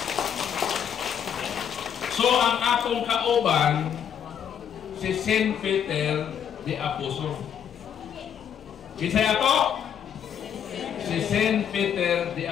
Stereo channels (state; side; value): quieter; right; 8.6 dB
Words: So ang atong kauban si Saint Peter the Apostle. Kisay ato? Si Saint Peter the